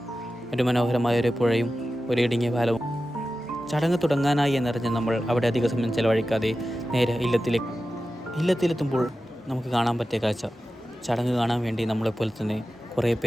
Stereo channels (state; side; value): normal; both; correlation 0.93